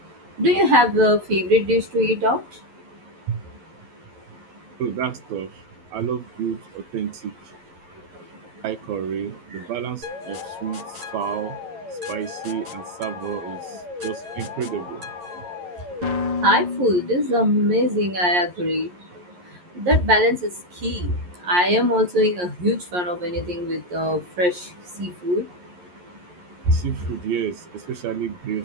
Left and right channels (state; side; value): late; left; 11 ms